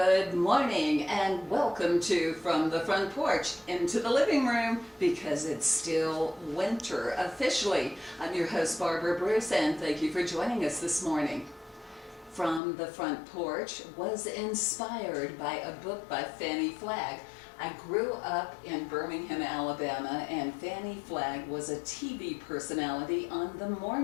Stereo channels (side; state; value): right; drops out; at 12.6 s